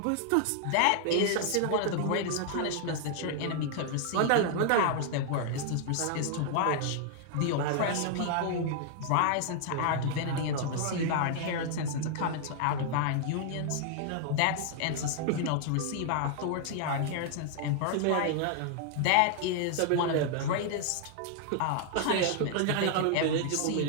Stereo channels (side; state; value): both; different; correlation 0.00